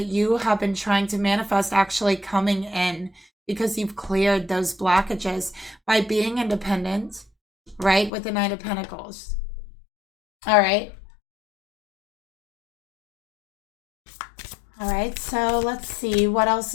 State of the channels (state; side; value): drops out; right; at 8.1 s